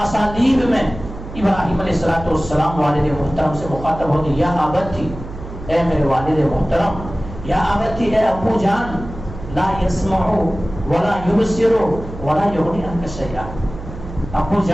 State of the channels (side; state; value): right; noise; hum, 12 dB below the sound